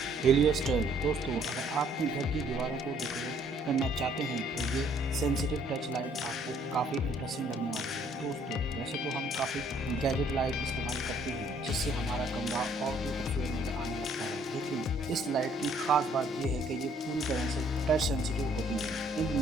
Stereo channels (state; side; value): normal; both; correlation 0.63